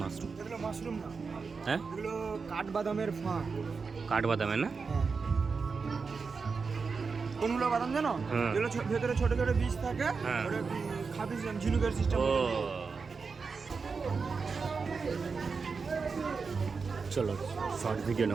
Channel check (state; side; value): quieter; left; 5.0 dB